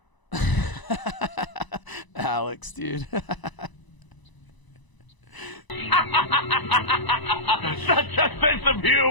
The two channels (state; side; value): late; right; 1.0 ms